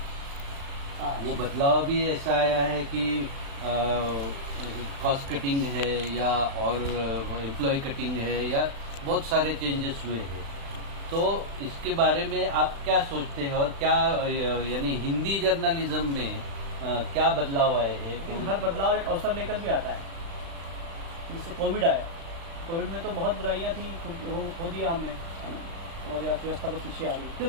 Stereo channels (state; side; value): late; left; 36 ms